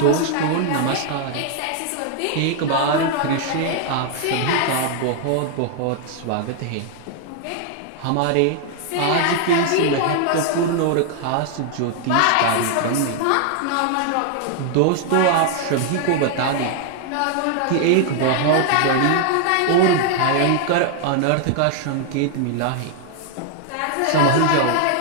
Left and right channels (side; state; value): both; different; correlation 0.00